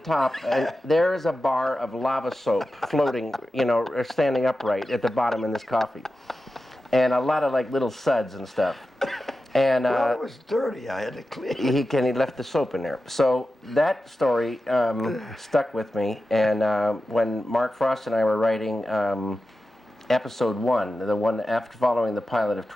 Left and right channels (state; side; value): normal; both; correlation 0.92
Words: and there is a bar of lava soap floating, standing upright at the bottom in this coffee, and a lot of like little suds and stuff. And well, it was dirty. I had to clean it. He left the soap in there. So that story stuck with me. And when Mark Frost and I were writing episode 1, the one after following the pilot of